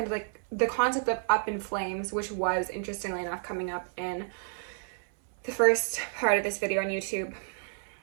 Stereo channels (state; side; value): silent; left; 58 dB below the other